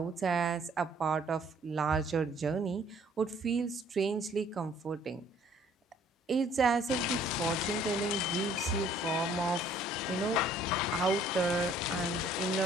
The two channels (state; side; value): normal; both; correlation 0.59